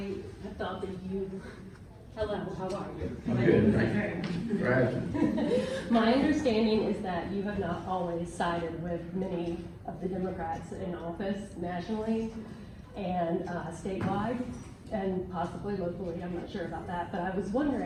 have thought that hello, how are you? Good. Right. My understanding is that you have not always sided with many of the Democrats in office nationally and statewide, and possibly locally, I'm not sure about that, but I was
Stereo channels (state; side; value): identical; both; correlation 1.00